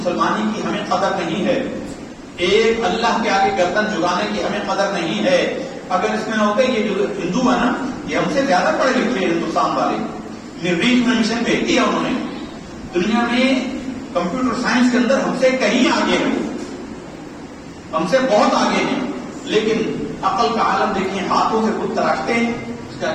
کی ہمیں قدر نہیں ہے. ایک اللہ کے آگے گردن جھکانے کی ہمیں قدر نہیں ہے. اگر اس میں نہ ہوتے, یہ جو ہندو ہے نا, یہ ہم سے زیادہ پڑھے لکھے ہندوستان والے. مریخ میں مشن بھیج دیا انہوں نے. دنیا میں کمپیوٹر سائنس کے اندر ہم سے کہیں آگے ہیں, ہم سے بہت آگے ہیں. لیکن عقل کا عالم دیکھیں, ہاتھوں سے خود تراشتے ہیں, اس کے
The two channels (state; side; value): identical; both; correlation 1.00